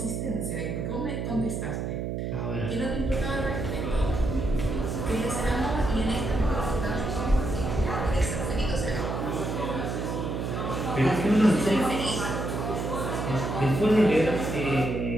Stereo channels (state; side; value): noise; right; hum, 3 dB below the sound